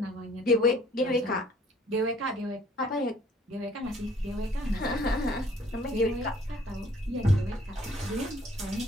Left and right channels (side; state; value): both; normal; correlation 0.57